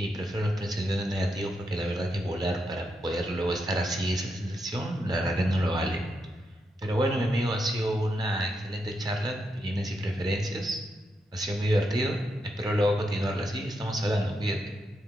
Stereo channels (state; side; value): normal; both; correlation 0.83